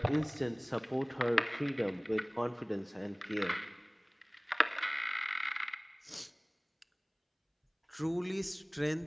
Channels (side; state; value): both; identical; correlation 1.00